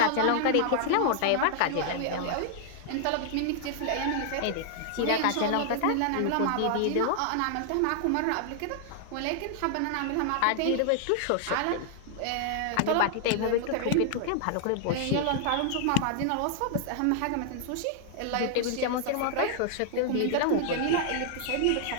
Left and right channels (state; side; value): different; both; correlation -0.01